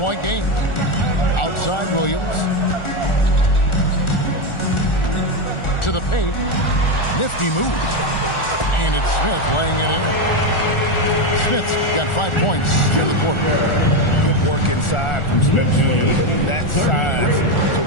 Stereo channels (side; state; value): right; late; 1.4 ms